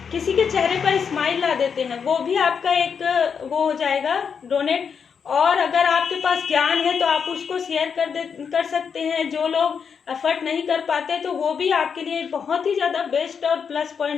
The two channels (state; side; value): quieter; right; 6.5 dB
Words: के चेहरे पर स्माइल ला देते हैं, वो भी आपका एक वो हो जाएगा डोनेट। और अगर आपके पास ज्ञान है तो आप उसको शेयर कर सकते हैं। जो लोग एफर्ट नहीं कर पाते तो वो भी आपके लिए बहुत ही ज्यादा बेस्ट और प्लस